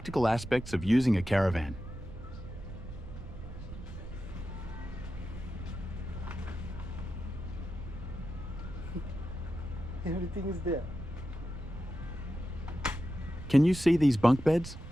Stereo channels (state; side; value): noise; right; rumble, 11 dB below the sound